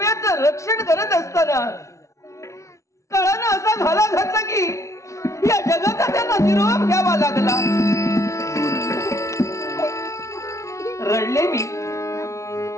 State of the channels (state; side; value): late; right; 0.14 ms